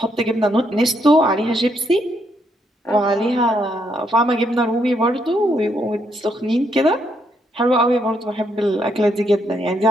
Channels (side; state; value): both; normal; correlation 0.75